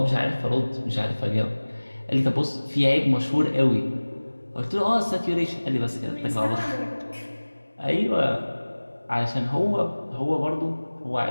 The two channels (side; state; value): both; inverted; correlation -1.00